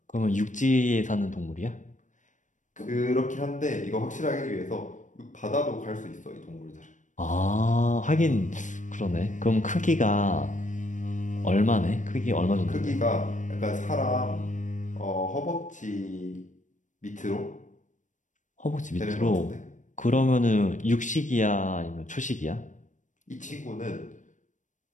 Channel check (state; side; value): late; right; 0.37 ms